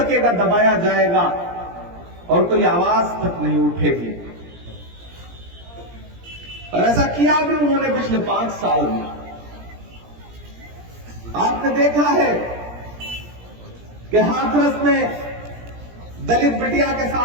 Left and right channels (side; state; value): left; late; 17 ms